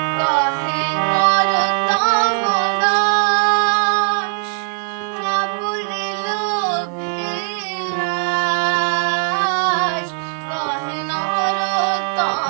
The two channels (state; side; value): silent; left; digital silence